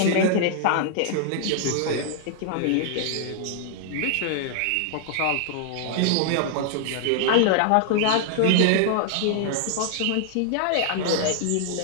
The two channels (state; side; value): different; both; correlation 0.00